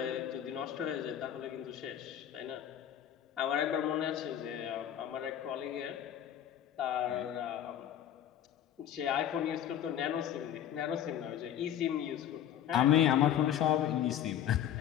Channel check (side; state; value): right; quieter; 10.4 dB